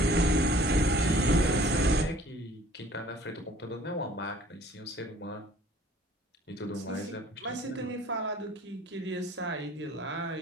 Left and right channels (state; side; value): normal; both; correlation 0.53